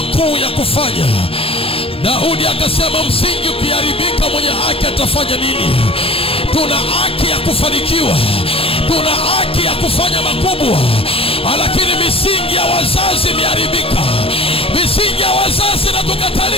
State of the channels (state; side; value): late; right; 0.27 ms